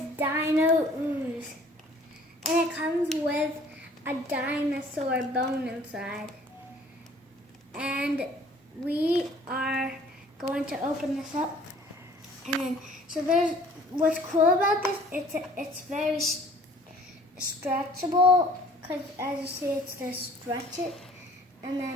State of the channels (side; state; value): both; normal; correlation 0.53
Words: Dino ooze. And it comes with a dinosaur bone inside. And we are going to open this up. And then, so there's, what's cool about this, it's very stretchable, because as you see, it's to stretch it and